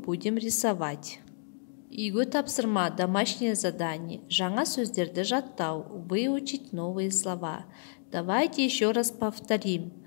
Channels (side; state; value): right; silent; digital silence